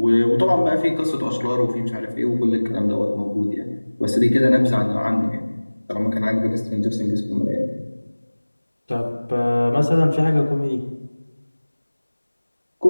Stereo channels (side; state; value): both; inverted; correlation -1.00